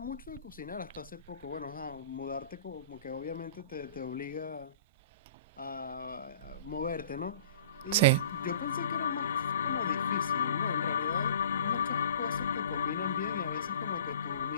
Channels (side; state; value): both; inverted; correlation -0.45